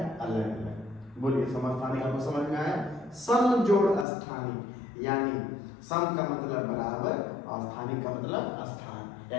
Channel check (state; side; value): drops out; right; at 4.0 s